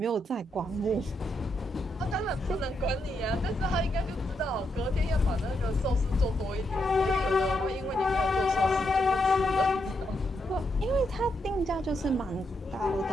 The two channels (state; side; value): normal; both; correlation 0.81